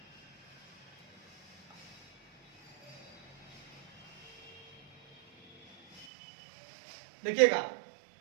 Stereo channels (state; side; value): drops out; left; at 6.1 s